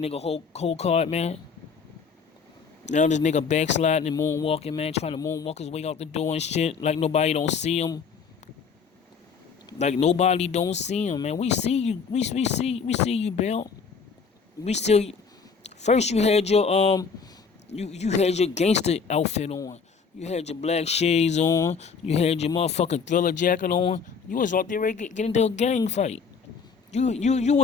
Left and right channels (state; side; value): quieter; right; 5.7 dB